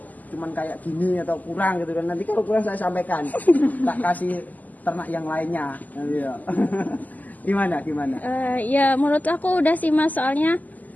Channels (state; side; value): late; right; 0.080 ms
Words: cuman kayak gini atau kurang gitu kan? Nanti kalau kurang saya sampaikan, tak kasih ternak yang lainnya. Iya. Gimana? Ya menurut aku udah sih Mas, soalnya